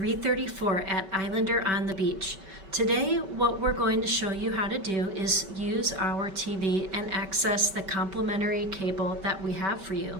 at Islander on the Beach. Today, what we're going to show you how to do is use our TV and access the complimentary cable that we have for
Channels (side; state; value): left; late; 5.2 ms